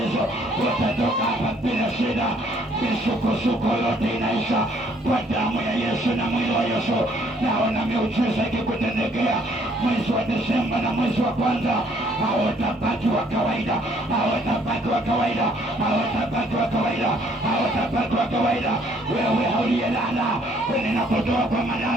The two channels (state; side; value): normal; both; correlation 0.64